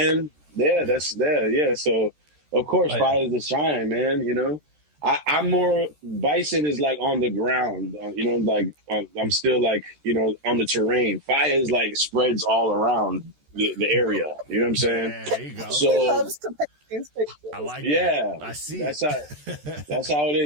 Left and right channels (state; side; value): late; left; 13 ms